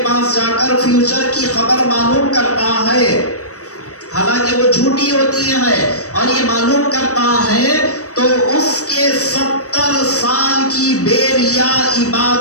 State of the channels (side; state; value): right; late; 0.66 ms